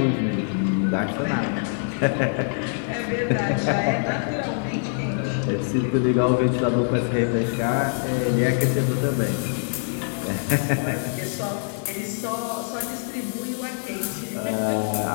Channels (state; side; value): silent; right; 62 dB below the other